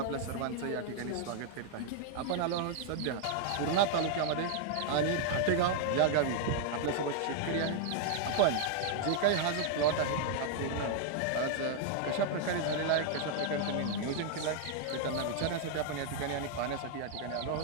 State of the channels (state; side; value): different; both; correlation 0.00